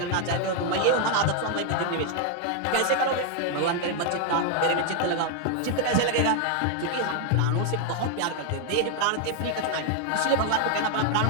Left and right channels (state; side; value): different; both; correlation 0.00